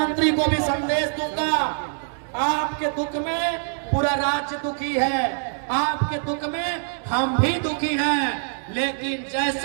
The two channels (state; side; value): silent; left; digital silence